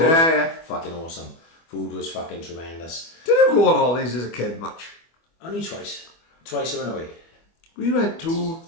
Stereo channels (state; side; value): late; right; 24 ms